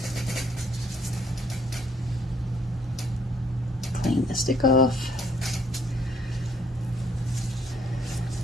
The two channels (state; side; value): normal; both; correlation 0.66